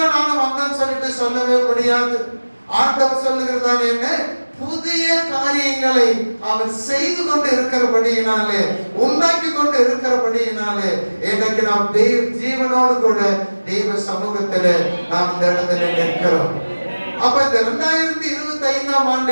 நானும் வந்தேன்னு சொல்லிட்டு சொல்லவே முடியாது. ஆண்டவர் சொல்லுகிறதான என்ன, புதிய காரியங்களை அவர் செய்து கொண்டு இருக்கிறபடியினாலே, உண்டாக்கி கொண்டு இருக்கிறபடியினாலே எனக்கு நாம் தெய்வ ஜீவனோடு கூட தெய்வ சமூகத்திலே நாம் இந்த இடத்துல நிற்கிறோம். அப்ப இந்த 2025ஆம்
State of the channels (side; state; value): both; inverted; correlation -1.00